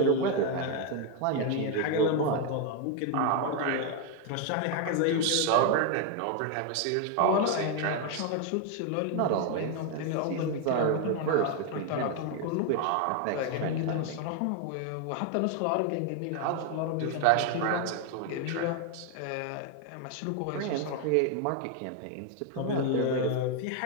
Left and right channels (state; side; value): different; both; correlation 0.01